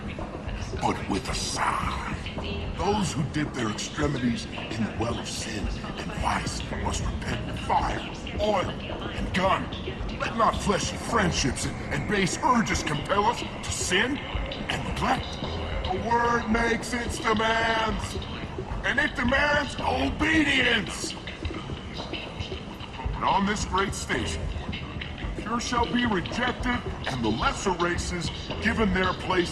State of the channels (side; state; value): both; identical; correlation 1.00